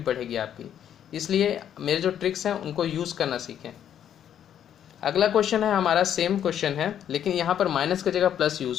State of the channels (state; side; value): quieter; right; 9.8 dB